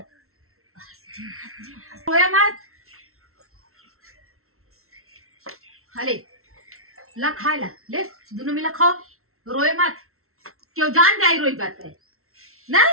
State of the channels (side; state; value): left; late; 0.63 ms